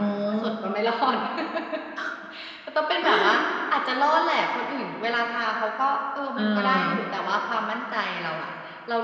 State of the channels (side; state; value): both; identical; correlation 1.00